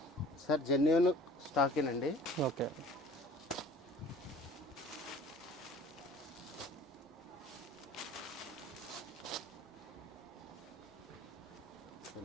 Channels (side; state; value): both; normal; correlation 0.47